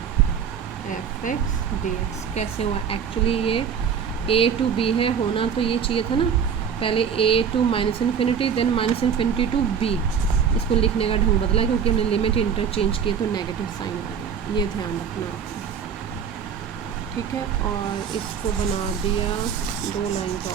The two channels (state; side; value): quieter; left; 7.3 dB